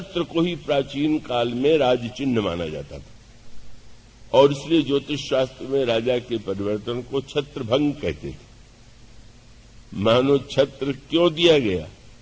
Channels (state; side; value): identical; both; correlation 1.00